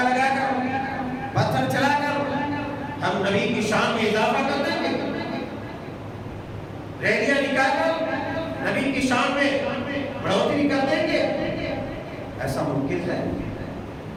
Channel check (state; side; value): identical; both; correlation 1.00